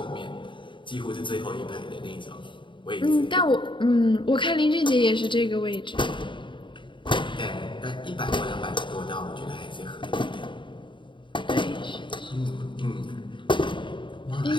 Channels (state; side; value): late; right; 0.23 ms